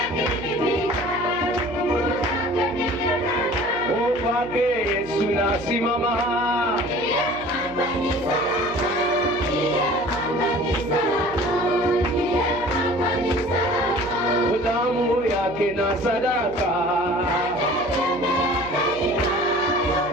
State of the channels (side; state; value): right; noise; hum, 17 dB below the sound